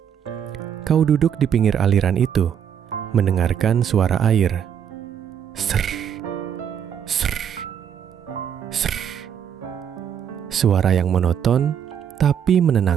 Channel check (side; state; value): left; quieter; 8.6 dB